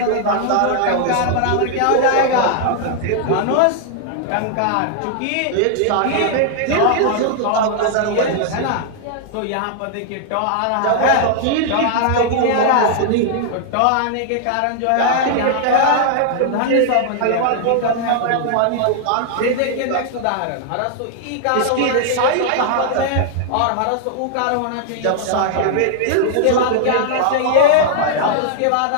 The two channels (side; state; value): both; different; correlation -0.01